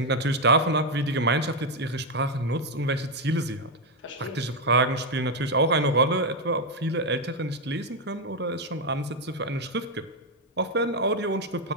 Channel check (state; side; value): normal; both; correlation 0.03